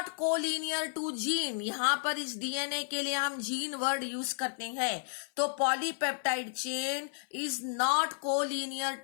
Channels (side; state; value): right; silent; 56 dB below the other